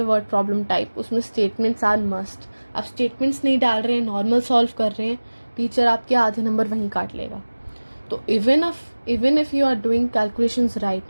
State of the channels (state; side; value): inverted; both; correlation -1.00